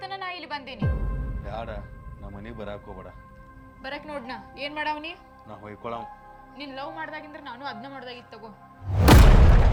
ನಾ ಇಲ್ಲಿ ಬಂದೇನಿ. ಬೇಡ, ನಮ್ಮ ಮನೆಗೆ ಬರಾಕ್ ಹೋಗ್ಬೇಡ. ಬರಕ್ ನೋಡ್ನ ಏನ್ ಮಾಡಾವನಿ? ನಾ ಹೊಯ್ಕೊಳವ್. ನೀನ್ ಲವ್ ಮಾಡ್ದಾಗಿಂದ್ರ ನಾನು ಅದನ್ನ ಮಾಡ್ದಾಗಿತ್ತು ತಗೋ.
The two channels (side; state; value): both; identical; correlation 1.00